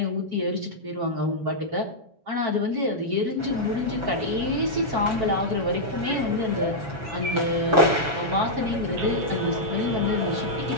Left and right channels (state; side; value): late; left; 7.3 ms